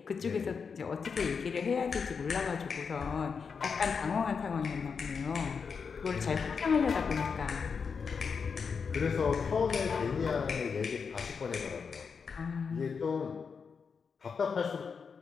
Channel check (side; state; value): right; quieter; 5.8 dB